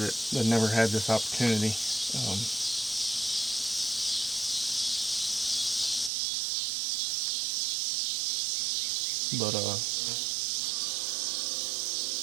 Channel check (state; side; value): drops out; left; at 6.1 s